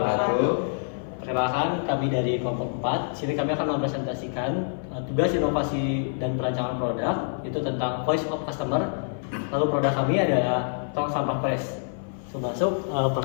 Perkenalkan, kami dari kelompok 4. Sini kami akan mempresentasikan tugas inovasi dan perancangan produk itu tentang voice of customer. Lalu produk kami adalah tong sampah press. Masuk,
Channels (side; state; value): right; silent; 61 dB below the other